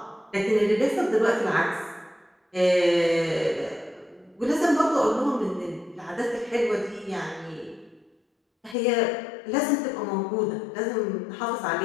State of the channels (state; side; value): drops out; right; at 8.8 s